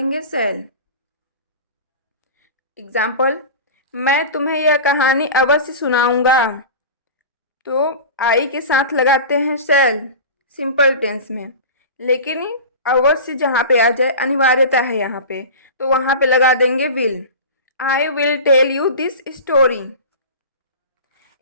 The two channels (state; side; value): inverted; both; correlation -0.31